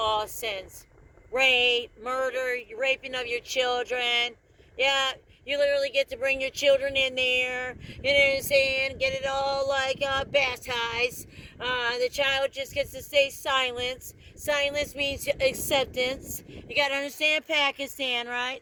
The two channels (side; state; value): both; identical; correlation 1.00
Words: sins. rape, murder, raping of your children. Yeah, you literally get to bring your children in there, you know what I'm saying, get it all like baptized. The child just gets to stay silent. Silence means acceptance. You gotta understand Pakistan, right?